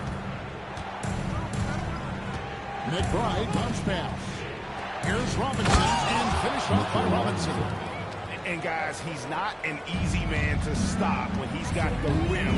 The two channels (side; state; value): both; identical; correlation 1.00